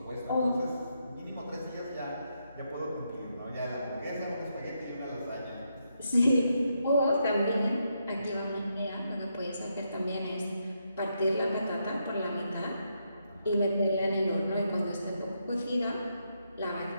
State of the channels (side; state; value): both; inverted; correlation -0.80